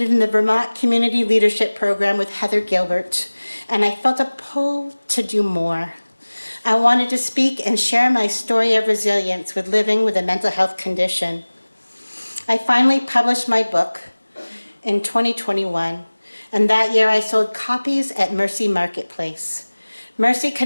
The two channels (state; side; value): inverted; both; correlation -1.00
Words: in the Vermont Community Leadership Program with Heather Gilbert, and I felt a pull to do more. I wanted to speak and share my story of resilience with living with a mental health condition. I finally published my book in 2021, and that year I sold copies at Mercy Marketplace. Mercy